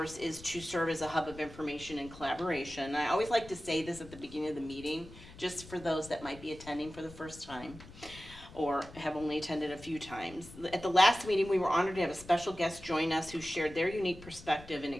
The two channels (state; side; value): noise; left; rumble, 18 dB below the sound